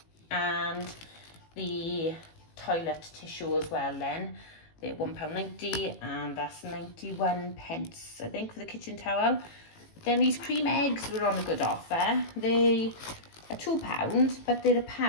and the toilet tissue as well then. They're £1.90, and that's 91 pence I think for the kitchen towel. Then these cream eggs were on a good offer. They are £2, but they're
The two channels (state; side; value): late; right; 18 ms